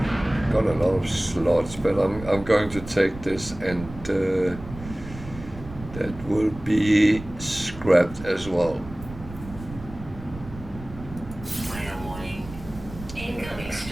got a lot of slots, but I'm going to take this, and that will be scrapped as well. Weather warning. Incoming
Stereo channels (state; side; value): noise; right; rumble, 14 dB below the sound